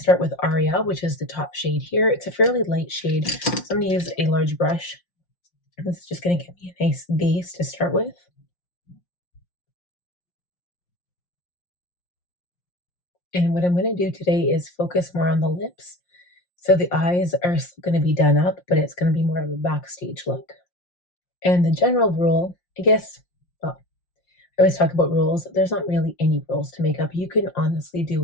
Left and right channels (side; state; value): right; late; 5.6 ms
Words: with Aria, which is the top shade here. It's a fairly light shade, so I'm going to use a large brush. This is just going to give me a nice base to start with. And what I'm going to do today is focus more on the lips. So the eyes are still going to be done up, but it's going to be more of a backstage look. And the general rule I guess, well, I always talk about rules. There's not really any rules to makeup. You can honestly do